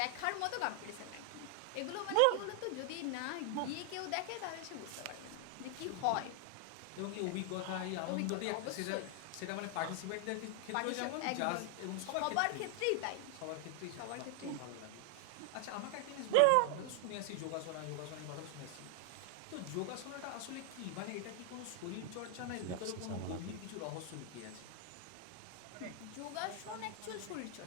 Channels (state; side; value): different; both; correlation 0.00